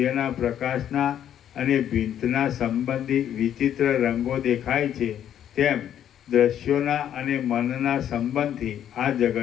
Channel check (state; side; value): quieter; right; 10.2 dB